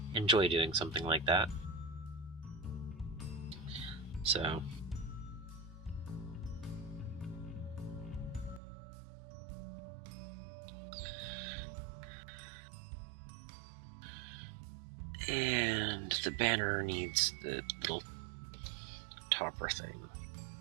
enjoy doing something like that. So... And the banner needs the little topper thing.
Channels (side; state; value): left; drops out; at 8.6 s